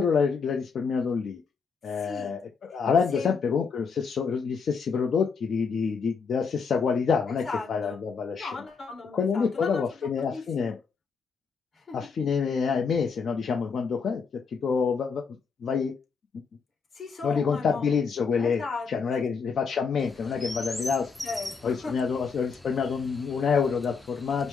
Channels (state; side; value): quieter; right; 5.5 dB